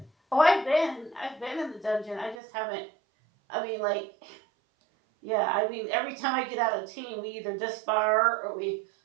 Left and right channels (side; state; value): left; drops out; at 2.4 s